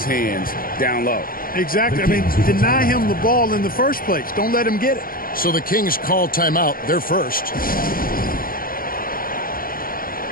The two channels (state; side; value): late; right; 0.42 ms